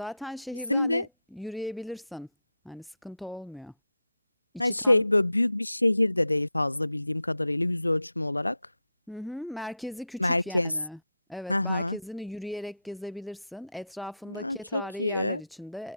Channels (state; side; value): inverted; both; correlation -0.84